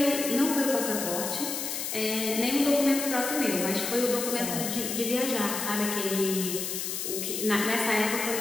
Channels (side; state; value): left; noise; hiss, 3 dB below the sound